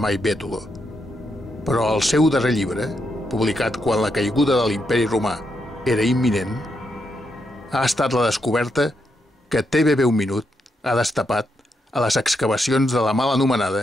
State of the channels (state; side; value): normal; both; correlation 0.81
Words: mai Bètolo, però el seu darrer llibre, publicat quan la caiguda de l'Imperi Romà era imminent, ha estat la descoberta que TVB Un Minut ha destapat a les excavacions de la mal